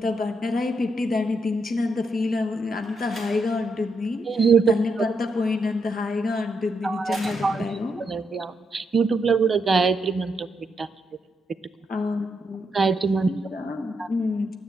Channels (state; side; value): normal; both; correlation 0.81